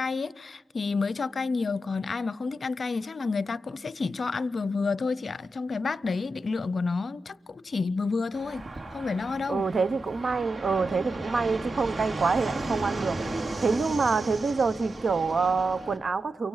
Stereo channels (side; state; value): both; normal; correlation 0.88